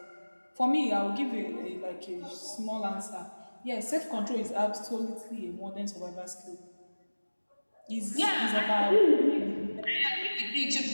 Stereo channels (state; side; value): inverted; both; correlation -1.00